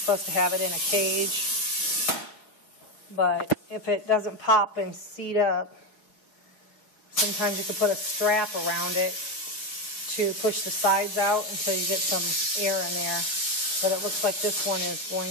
to have it in a cage. But if it doesn't pop and seat up, sometimes you can put a strap around it to push the sides out until you get some air in there. But it looks like this one is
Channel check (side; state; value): right; late; 6.4 ms